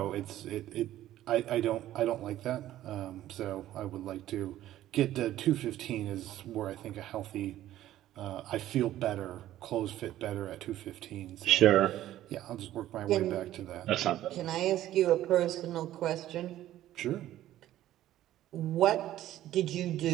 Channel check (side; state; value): left; quieter; 13.5 dB